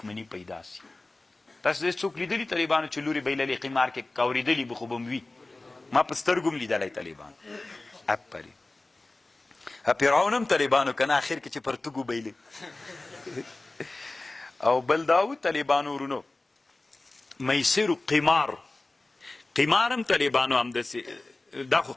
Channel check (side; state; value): right; quieter; 3.1 dB